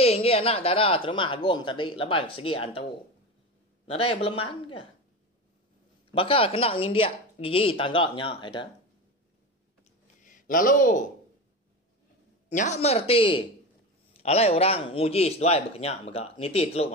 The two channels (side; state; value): both; normal; correlation 0.24